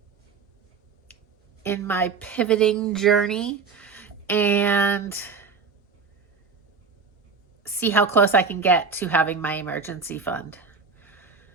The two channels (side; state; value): left; quieter; 5.1 dB